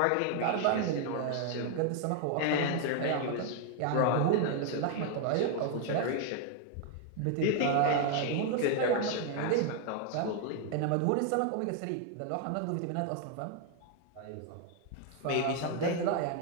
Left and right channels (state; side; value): different; both; correlation 0.01